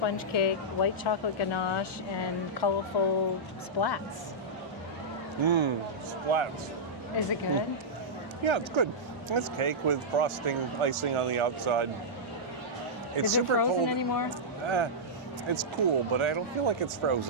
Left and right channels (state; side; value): normal; both; correlation -0.11